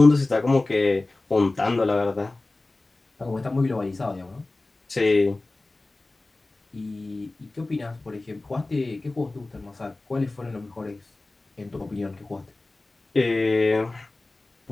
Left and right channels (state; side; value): quieter; right; 3.0 dB